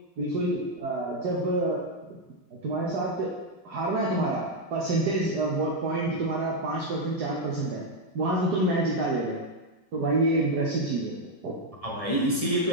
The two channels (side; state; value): left; late; 1.7 ms